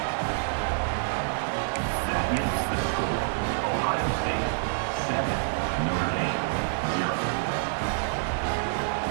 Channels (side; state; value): left; silent; digital silence